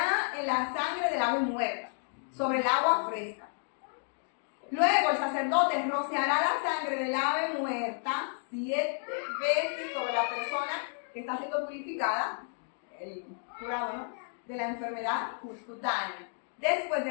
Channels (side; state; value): right; silent; 57 dB below the other